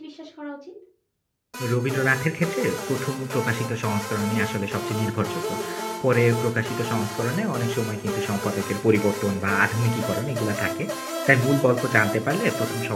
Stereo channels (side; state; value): both; identical; correlation 1.00